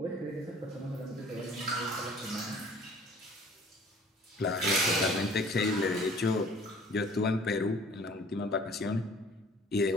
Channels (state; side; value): normal; both; correlation 0.51